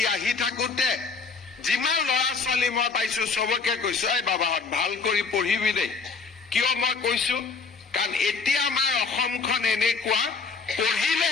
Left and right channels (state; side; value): quieter; right; 4.6 dB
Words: আহি থাকোতে যিমান ল'ৰা ছোৱালী মই পাইছো চবকে কৈছো, এই বাবাহঁত ভাল কৰি পঢ়িবি দেই। কিয় মই কৈছো? কাৰণ এতিয়া আমাৰ অসমখন এনেকুৱা,